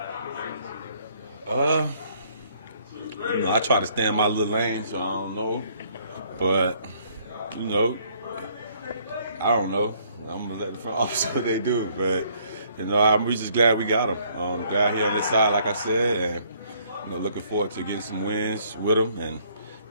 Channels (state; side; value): inverted; both; correlation -0.64